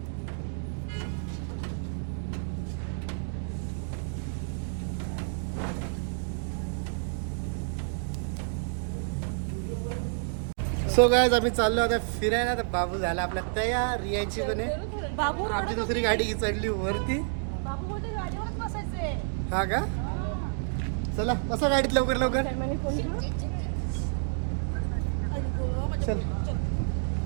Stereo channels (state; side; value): silent; left; digital silence